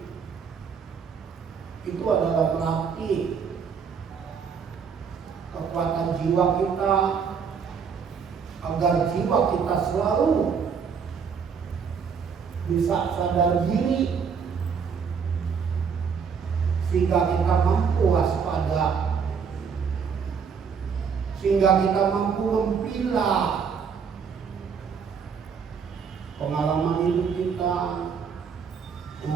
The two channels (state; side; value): quieter; left; 6.4 dB